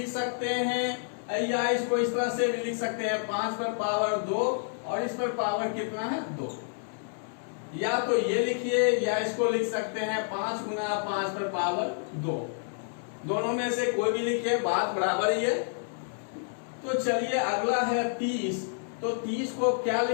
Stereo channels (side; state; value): right; silent; 58 dB below the other